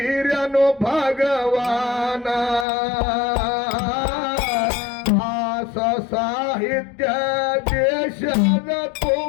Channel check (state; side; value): drops out; right; at 2.7 s